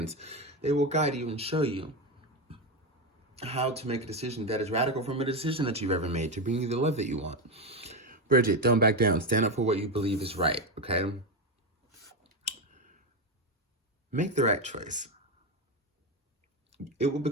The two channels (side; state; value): both; normal; correlation 0.12